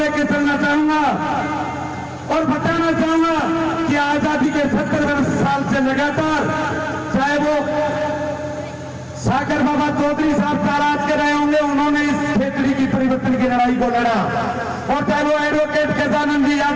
चलना चाहूंगा और बताना चाहूंगा कि आजादी के 70 साल से लगातार, चाहे वो सागर बाबा चौधरी साहब ताराज के रहे होंगे, उन्होंने इस खेतड़ी की परिवर्तन की लड़ाई को लड़ा, और चाहे वो एडवोकेट गजानंद जी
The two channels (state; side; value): identical; both; correlation 1.00